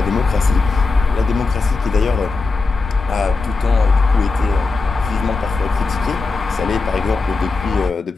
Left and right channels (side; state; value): right; quieter; 4.0 dB